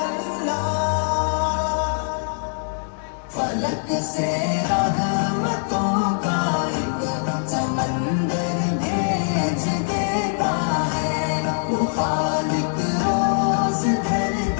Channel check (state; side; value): silent; right; 61 dB below the other